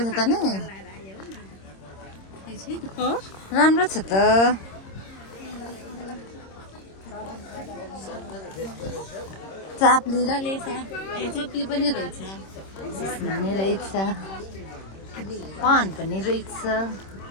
छ त नि राम्रो छ त चाप्ली र लेसा चप्ली पनि रहेछ पनि रहेछ पान पनि रहेछ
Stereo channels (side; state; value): right; late; 26 ms